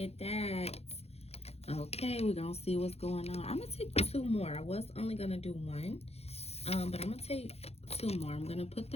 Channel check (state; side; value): late; right; 0.30 ms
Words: that. Okay, we're going to see what's going on. I'm going to take 2 more. I was only going to do 1. But I'm going to take 2 more. I'm going to put